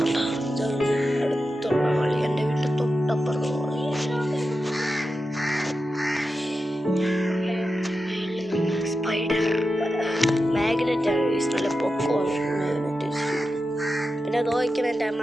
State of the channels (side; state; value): both; normal; correlation 0.90